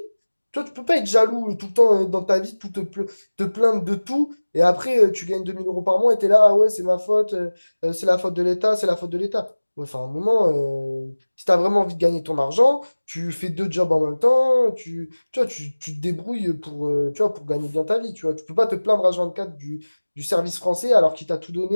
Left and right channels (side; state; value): both; inverted; correlation -1.00